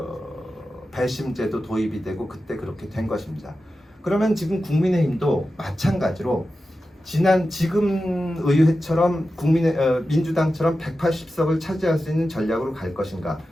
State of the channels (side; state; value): both; normal; correlation 0.92